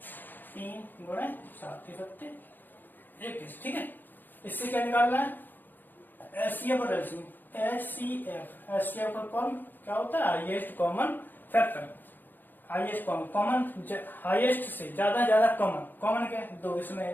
3 गुणे 7 7 21। ठीक है, इससे क्या निकालना है? एचसीएफ और एलसीएम। एचसीएफ का कॉमन क्या होता है? Highest common factor. Highest common highest से ज्यादा कॉमन। कॉमन क्या है? 2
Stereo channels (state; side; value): late; right; 0.090 ms